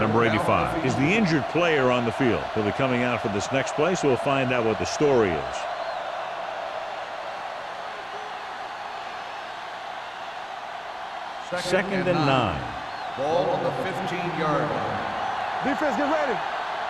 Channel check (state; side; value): identical; both; correlation 1.00